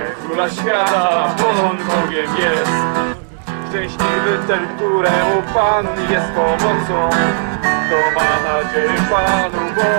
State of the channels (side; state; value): left; silent; digital silence